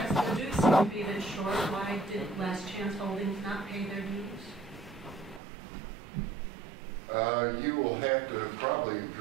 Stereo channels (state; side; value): drops out; left; at 5.4 s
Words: the dues seem to be a bit short. Why did Last Chance Holdings not pay their dues? You will have to probably